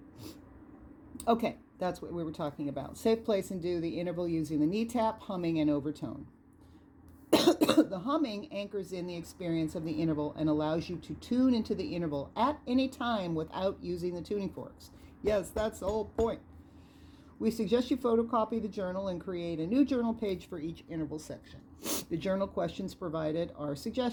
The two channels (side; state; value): both; identical; correlation 1.00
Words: Okay, that's what we were talking about. Safe place and do the interval using the knee tap, humming, and overtone. The humming anchors in the experience of the interval and allows you to tune into the interval at any time without using the tuning forks. Yes, that's the whole point. We suggest you photocopy the journal and create a new journal page for each interval section. The journal questions provided are